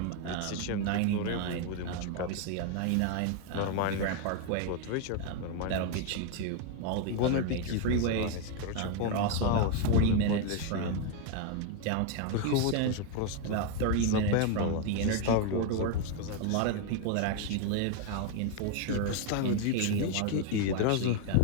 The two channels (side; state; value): both; different; correlation 0.01